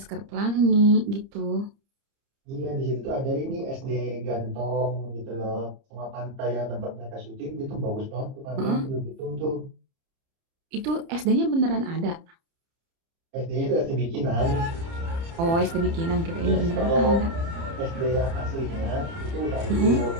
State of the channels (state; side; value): late; left; 30 ms